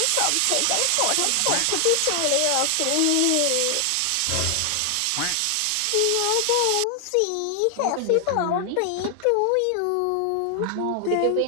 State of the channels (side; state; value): both; different; correlation 0.00